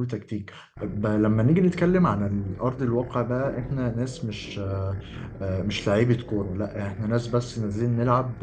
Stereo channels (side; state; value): both; identical; correlation 1.00